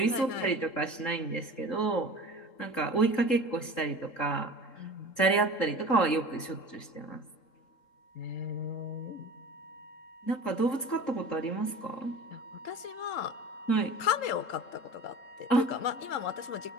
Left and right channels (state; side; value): late; right; 3.7 ms